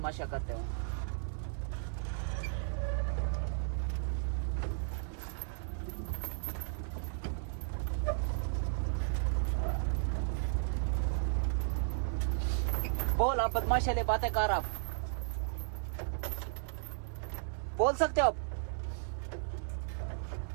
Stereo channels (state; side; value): silent; left; 55 dB below the other